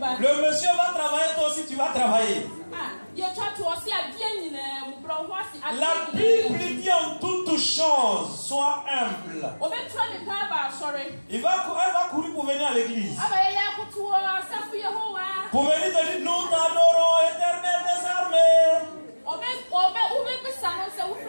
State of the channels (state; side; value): inverted; both; correlation -1.00